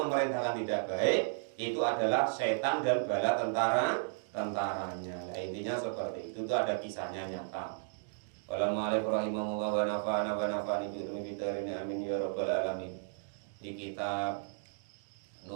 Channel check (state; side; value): silent; left; digital silence